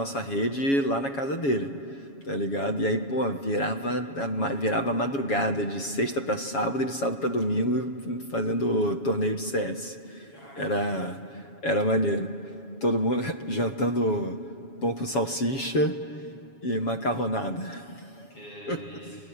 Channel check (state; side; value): late; right; 7.2 ms